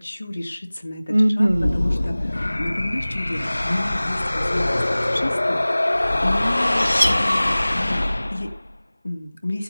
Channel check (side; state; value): both; inverted; correlation -0.99